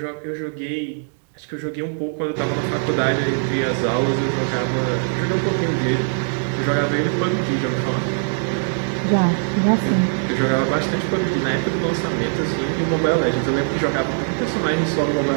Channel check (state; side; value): silent; left; digital silence